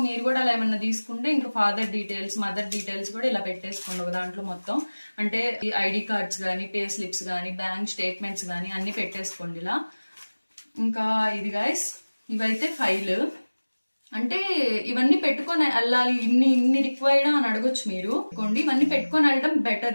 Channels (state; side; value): inverted; both; correlation -1.00